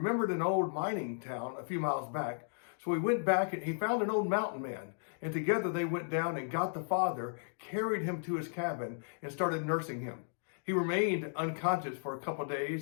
an old mining town a few miles back. So he went back and he found an old mountain man. And together they went down and got the father, carried him to his cabin, and started nursing him. He remained unconscious for a couple of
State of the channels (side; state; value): right; silent; digital silence